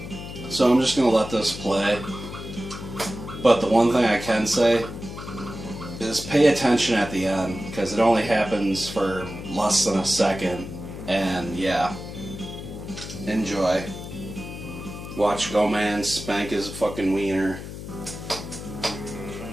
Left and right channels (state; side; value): noise; left; hum, 10 dB below the sound